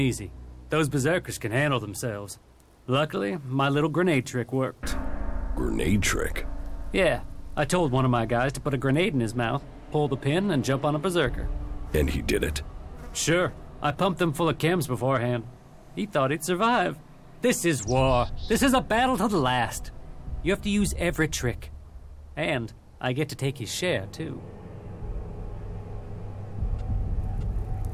Those berserkers can handle themselves. Luckily, my little grenade trick worked. Grenade trick? Yeah, I told one of my guys to put a grenade in his mouth, pull the pin, and jump on a berserker. And he did it? Sure. I pumped him full of chems beforehand. He thought he'd survive. This is war. This is a battle to the last. You have to use every trick. And I get to take his share, too.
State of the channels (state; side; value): identical; both; correlation 1.00